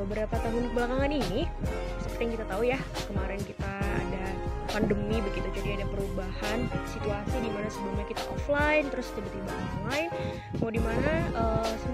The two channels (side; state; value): both; identical; correlation 1.00